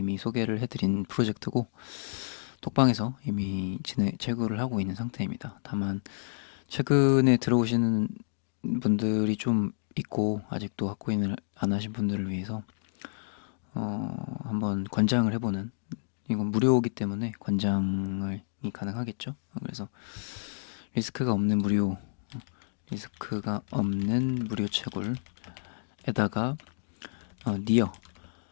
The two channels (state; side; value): silent; right; digital silence